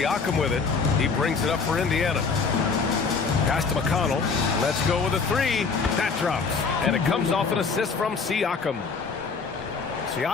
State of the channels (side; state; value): right; quieter; 4.9 dB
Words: with it. He brings it up for Indiana. Pass to McConnell. Let's go with a three. That drops. And it comes off an assist from Siakam.